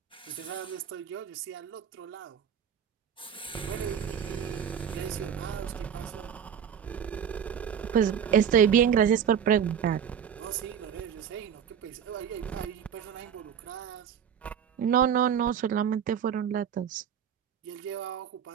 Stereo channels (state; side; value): quieter; left; 8.2 dB